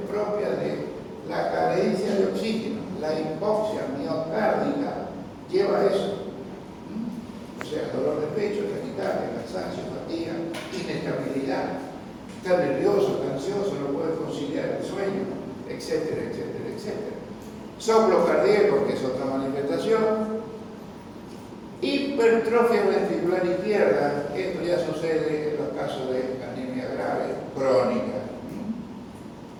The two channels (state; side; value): identical; both; correlation 1.00